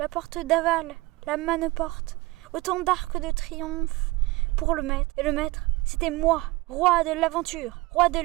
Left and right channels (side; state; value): left; quieter; 21.5 dB